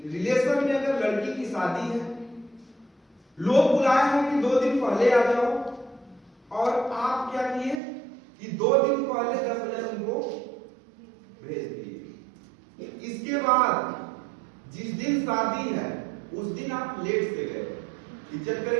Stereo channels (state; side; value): drops out; left; at 7.8 s